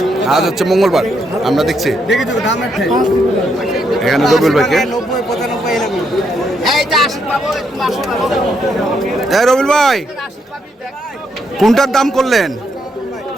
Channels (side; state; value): both; normal; correlation 0.76